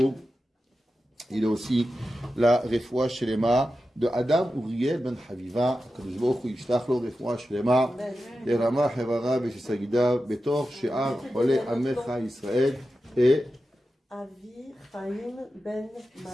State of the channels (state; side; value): normal; both; correlation 0.92